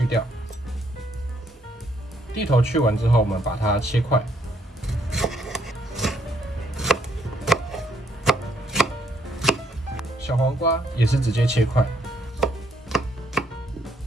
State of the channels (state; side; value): normal; both; correlation 0.70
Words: 掉，蒂头去完之后，我们把它切块。小黄瓜也是直接切块。